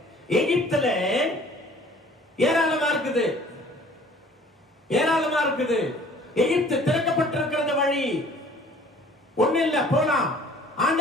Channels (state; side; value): normal; both; correlation 0.52